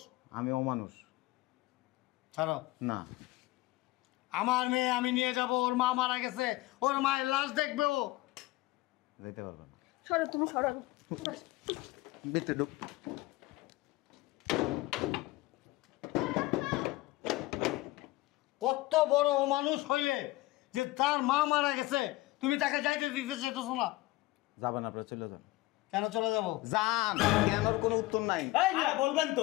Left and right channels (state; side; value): quieter; right; 19.2 dB